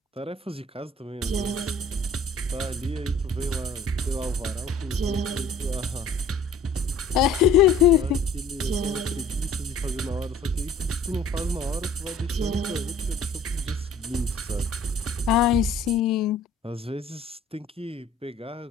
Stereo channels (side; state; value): right; quieter; 3.3 dB